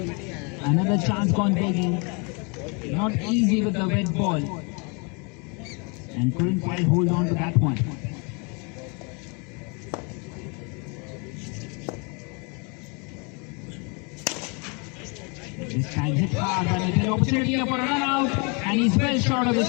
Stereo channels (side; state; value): right; quieter; 33.0 dB